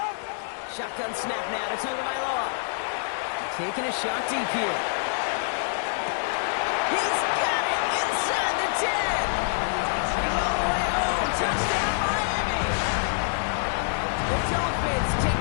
Shotgun snap now to Tagovailoa. Taking a shot deep here. He's got it inside the 10. He's all the way home. Touchdown, Miami. The Dolphins take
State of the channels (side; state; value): right; silent; digital silence